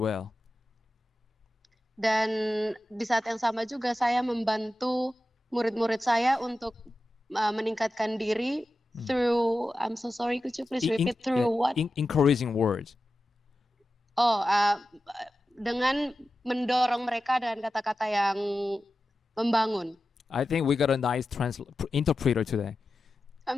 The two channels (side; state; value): both; normal; correlation 0.93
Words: Dan di saat yang sama juga saya membantu murid-murid saya untuk meningkatkan diri through, I'm so sorry, could you please repeat through what? Encouraging words. Dengan mendorong mereka dengan kata-kata yang membangun. I think we got a nice interpreter today.